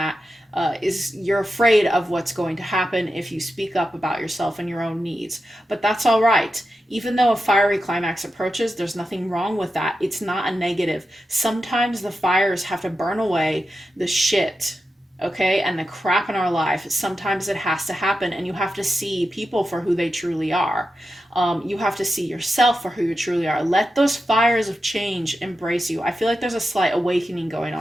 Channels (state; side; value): normal; both; correlation 0.90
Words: you're afraid of what's going to happen if you speak up about yourself and your own needs. But that's all right. Even though a fiery climax approaches, there's nothing wrong with that. It's not a negative. Sometimes the fires have to burn away the shit, okay, and the crap in our life. Sometimes it has to happen, and you have to see people for who they truly are. You have to see yourself for who you truly are. Let those fires of change embrace you. I feel like there's a slight awakening going